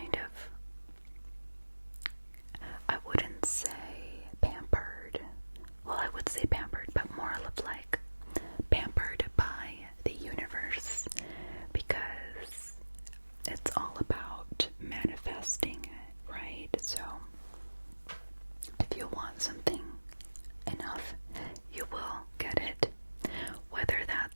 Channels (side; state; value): both; inverted; correlation -1.00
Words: of, I wouldn't say pampered. Well, I would say pampered, but more of like pampered by the universe, because it's all about manifesting it, right? So if you want something enough, you will get it. Whether